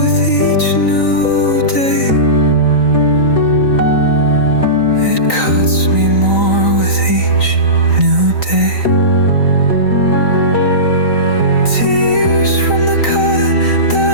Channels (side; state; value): right; late; 3.9 ms